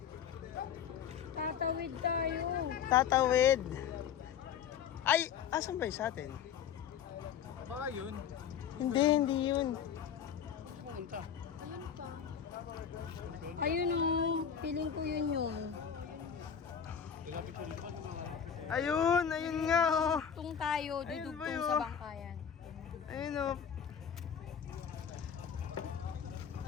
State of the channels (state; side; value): quieter; right; 8.0 dB